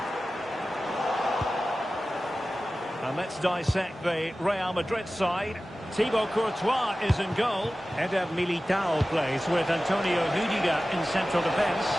And let's dissect the Real Madrid side. Thibaut Courtois is in goal. Eder Militao plays with Antonio Rudiger in central defence.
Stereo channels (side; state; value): both; normal; correlation 0.96